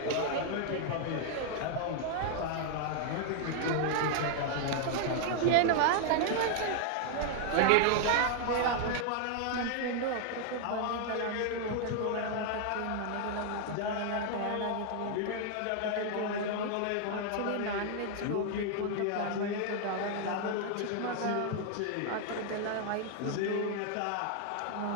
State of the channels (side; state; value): both; different; correlation 0.00